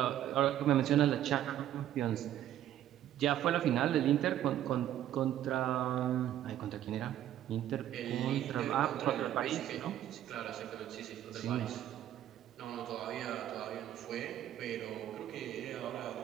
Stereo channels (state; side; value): quieter; left; 11.9 dB